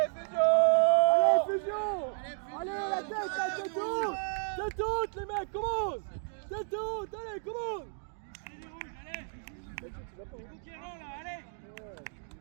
fusion. Allez, la tête, c'est tout, les mecs, commence. C'est tout, allez, commence.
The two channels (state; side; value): silent; left; digital silence